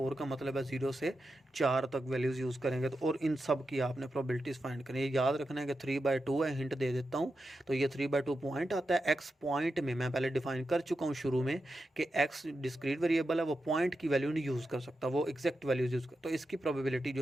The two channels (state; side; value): normal; both; correlation 0.89